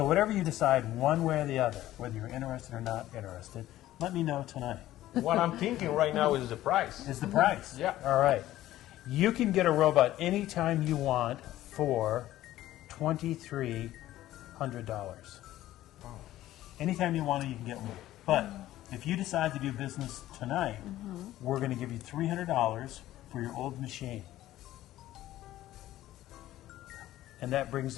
whatever you decide, one way or the other, whether you're interested or not interested, let me know tonight. What I'm thinking right now is the price. Is the price. Yeah. All right. You can get a robot anytime you want for $2,300. Anytime you want it, you can get one. But if you decide to do business tonight, we're going to give you $300 for your old machine. And that brings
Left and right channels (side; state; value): right; quieter; 14.5 dB